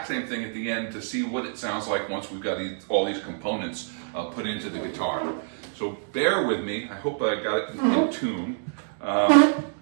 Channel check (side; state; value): left; silent; digital silence